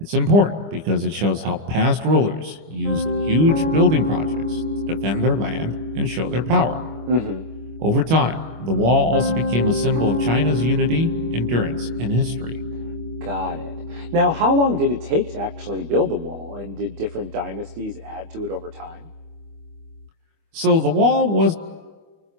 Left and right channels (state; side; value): late; left; 25 ms